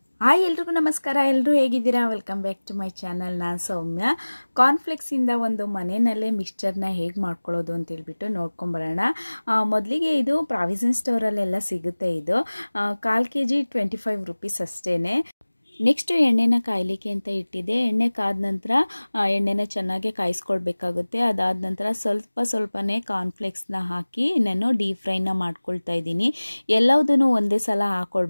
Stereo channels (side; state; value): both; inverted; correlation -1.00